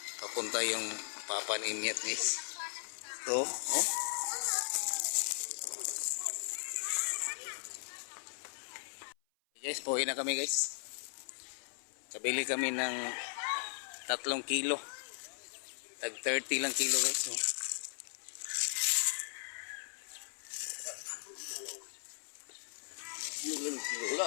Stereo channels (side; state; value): right; silent; 53 dB below the other